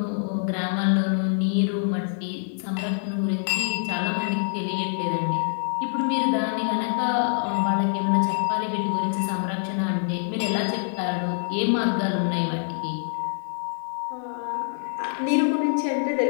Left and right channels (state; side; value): silent; right; digital silence